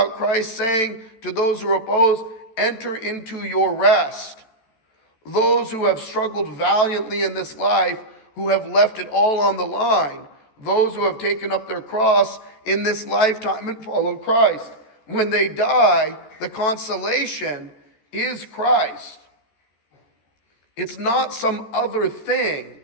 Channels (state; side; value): late; right; 14 ms